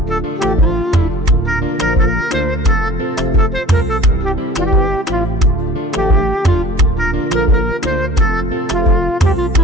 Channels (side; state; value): both; normal; correlation 0.46